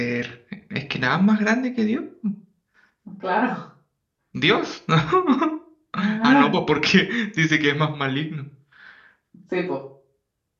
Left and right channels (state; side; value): identical; both; correlation 1.00